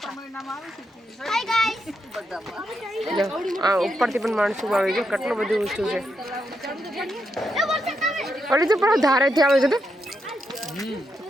ઉપરથી પણ માણસો આવે છે. કેટલું બધું ઊંચું છે. ઓલી તો પણ ધારેથી આવે છે. તો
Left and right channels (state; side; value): normal; both; correlation 0.82